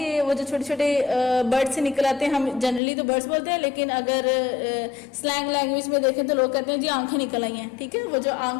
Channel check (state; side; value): drops out; right; at 2.8 s